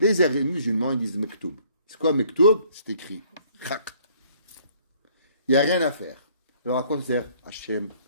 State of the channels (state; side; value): inverted; both; correlation -0.60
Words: musulmans, ils disent maktoub. C'est quoi maktoub? C'est écrit. Il n'y a rien à faire. Alors à quoi ça sert? Hachem,